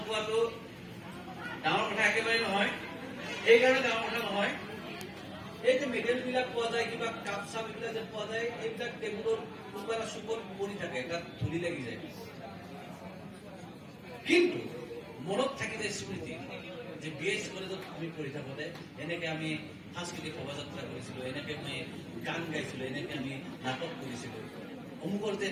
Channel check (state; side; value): identical; both; correlation 1.00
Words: ডাঙৰ কথা একেবাৰে নহয় এইকাৰণে ডাঙৰ কথা নহয় এই যে মেডেলবিলাক পোৱা যায় কিবা কাপ চাপ এইবিলাক যে পোৱা যায় এইবিলাক টেবুলৰ কোনোবা এটা চুকত পৰি থাকে তাত ধূলি লাগি যায় কিন্তু মনত থাকি যায় স্মৃতি যে BIS কলেজত আমি পঢ়ি থাকোঁতে এনেকৈ আমি সাংস্কৃতিক শোভাযাত্ৰা কৰিছিলোঁ এনেকৈ আমি গান গাইছিলোঁ এনেকৈ আমি নাটক কৰিছিলোঁ অমুকৰ যে